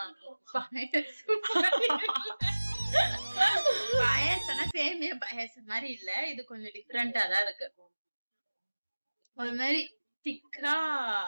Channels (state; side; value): inverted; both; correlation -1.00